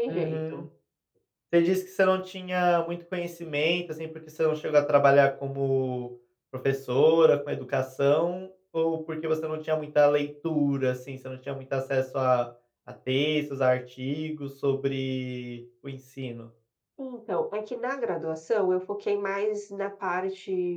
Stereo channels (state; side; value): identical; both; correlation 1.00